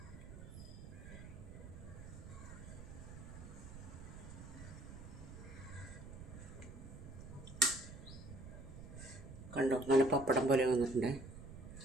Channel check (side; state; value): right; noise; rumble, 12 dB below the sound